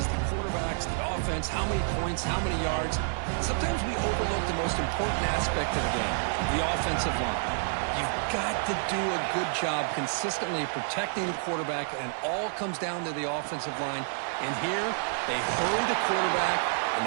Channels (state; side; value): silent; left; 57 dB below the other